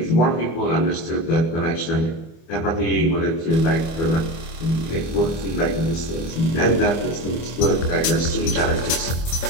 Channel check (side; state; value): right; late; 25 ms